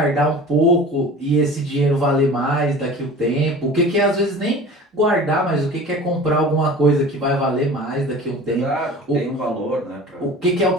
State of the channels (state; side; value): normal; both; correlation 0.40